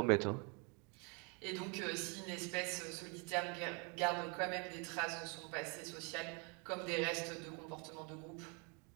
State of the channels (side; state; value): left; quieter; 33.8 dB